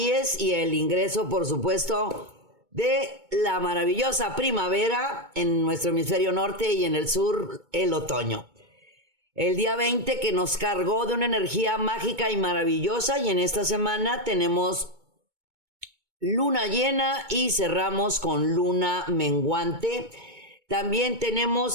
y el ingreso, por supuesto, de la maravillosa primavera en nuestro hemisferio norte y en el sur el otoño. El día 20 que nos cargó de una energía mágica y maravillosa, y en esta semana tenemos luna llena y cerramos con luna menguante. También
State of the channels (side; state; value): left; late; 2.2 ms